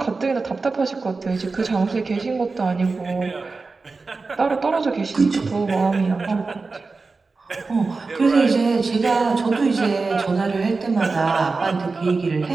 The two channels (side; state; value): left; quieter; 4.0 dB